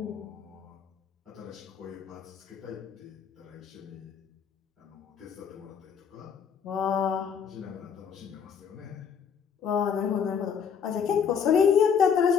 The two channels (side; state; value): right; quieter; 7.0 dB